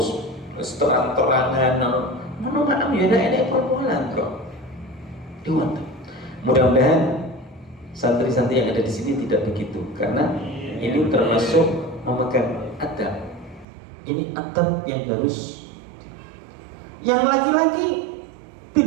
terang-terangan ngono makan ya enek pol-polan kok. Diwat. Mudah-mudahan santri-santri yang ada di sini tidak begitu, karena ini termasuk memegang adab. Ini adab yang harus. Yang laki-laki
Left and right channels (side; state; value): left; drops out; at 13.7 s